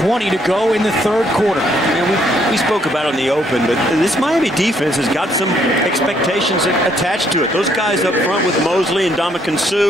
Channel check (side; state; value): both; normal; correlation 0.69